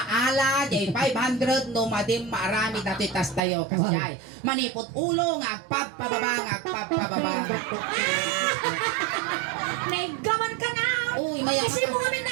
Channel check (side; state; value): left; drops out; at 3.4 s